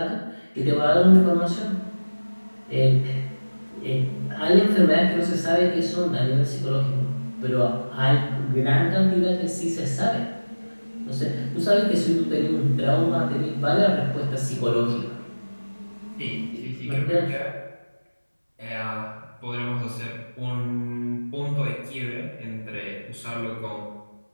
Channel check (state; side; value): inverted; both; correlation -1.00